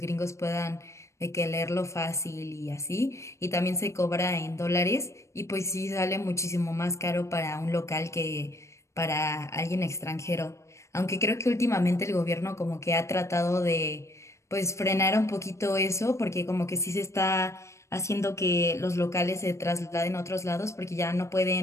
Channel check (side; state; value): right; late; 0.14 ms